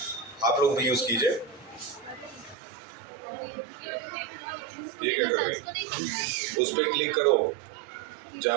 आप लोग भी यूज कीजिए। ये क्या कर रही है? उस पर क्लिक करो,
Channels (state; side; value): drops out; left; at 2.6 s